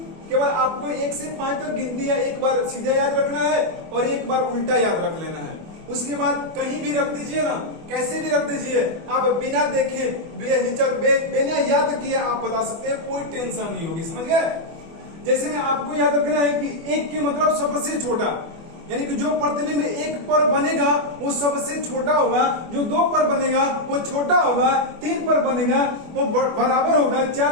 केवल आपको 1 से 5 तक गिनती या एक बार सीधा याद रखना है और एक बार उल्टा याद रख लेना है। उसके बाद कहीं भी रख दीजिए ना, कैसे भी रख दीजिए, आप बिना देखे बिना याद किए आप बता सकते हैं, कोई टेंशन नहीं होगी। समझ गए? जैसे में आपको याद रखना है कि 1 के मतलब सबसे छोटा, यानी कि जो प्रतिबिंब 1 पर बनेगा वो सबसे छोटा होगा, जो 2 पर बनेगा वो छोटा होगा, 3 पर बनेगा वो बराबर होगा,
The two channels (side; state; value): left; late; 24 ms